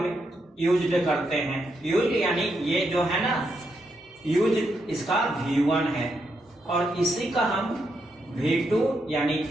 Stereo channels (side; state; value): both; normal; correlation 0.81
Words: यूज्ड करते हैं। यूज यानी ये जो है ना, यूज इसका V1 है और इसी का हम V2 यानी